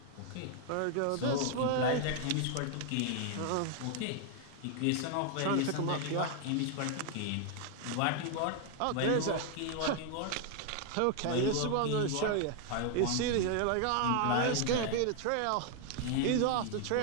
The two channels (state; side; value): different; both; correlation 0.00